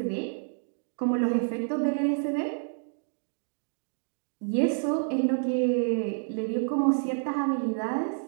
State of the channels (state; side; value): silent; left; digital silence